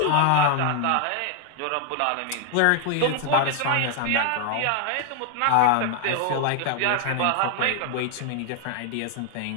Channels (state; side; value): different; both; correlation 0.00